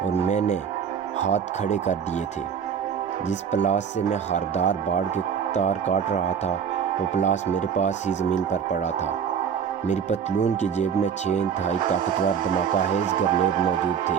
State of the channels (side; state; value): left; quieter; 7.5 dB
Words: اور میں نے ہاتھ کھڑے کر دیے تھے۔ جس پلاس سے میں ہاردار باڑ کے تار کاٹ رہا تھا وہ پلاس میرے پاس ہی زمین پر پڑا تھا۔ میری پتلون کی جیب میں 6 انتہائی طاقتور دھماکہ خیز گرنیڈ موجود تھے۔